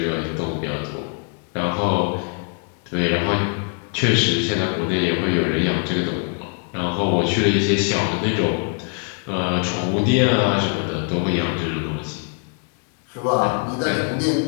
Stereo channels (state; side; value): quieter; right; 38.7 dB